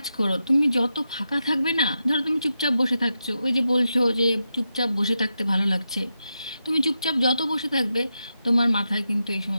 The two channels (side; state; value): both; inverted; correlation -0.88